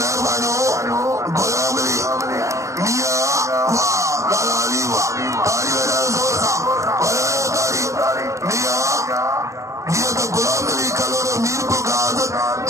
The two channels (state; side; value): late; left; 0.15 ms